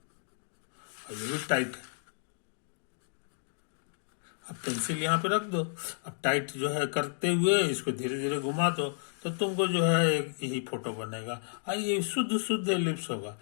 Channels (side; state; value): right; silent; digital silence